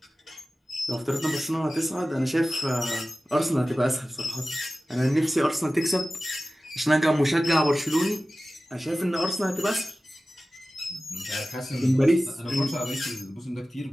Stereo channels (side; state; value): both; normal; correlation 0.96